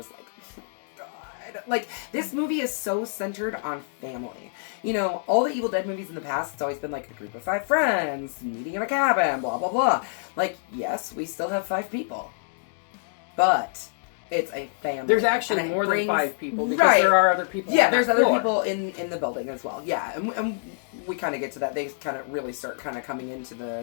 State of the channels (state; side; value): silent; right; digital silence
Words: like, God. Like, this movie is so centered on family. You know, all the Evil Dead movies in the past, it's always been like a group of 5 friends, meeting in a cabin, blah, blah, blah. Like, yes, we still have 5 people. But it's a family. There's actually more than 5 people, because there are other people there's other people in the building as well. Yeah, and we kind of get to that. They kind of really start kind of coming into